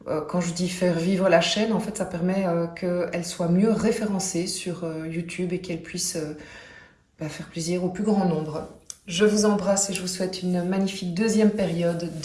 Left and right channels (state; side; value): identical; both; correlation 1.00